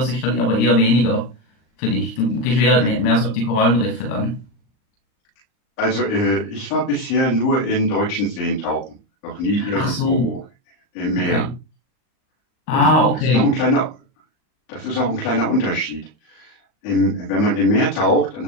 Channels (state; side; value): late; right; 39 ms